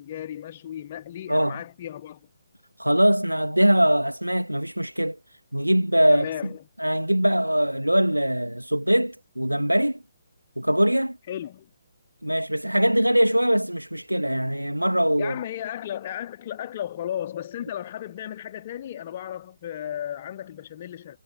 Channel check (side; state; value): both; inverted; correlation -0.98